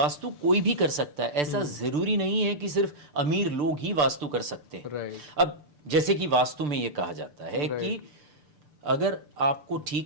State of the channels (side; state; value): left; late; 6.8 ms